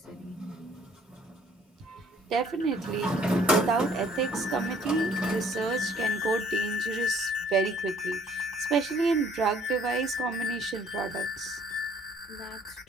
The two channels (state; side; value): normal; both; correlation 0.59